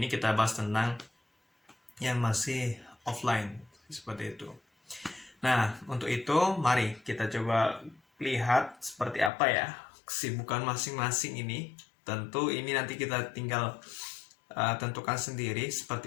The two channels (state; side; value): drops out; right; at 9.3 s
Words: kita bahas tentang yang masih offline seperti itu. Nah, untuk itu mari kita coba lihat seperti apa ya kesibukan masing-masing ini. Tentu ini nanti kita tinggal tentukan sendiri